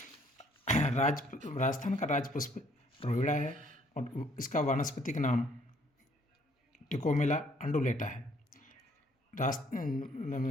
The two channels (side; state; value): both; normal; correlation 0.63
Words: राजस्थान का राज्य पुष्प रोहिड़ा है और इसका वानस्पतिक नाम टिकोमेला अंडुलेटा है।